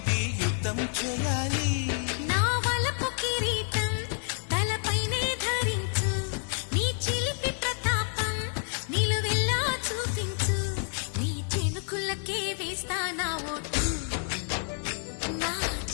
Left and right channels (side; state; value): right; silent; 59 dB below the other